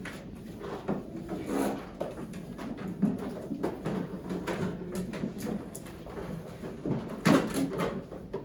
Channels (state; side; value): identical; both; correlation 1.00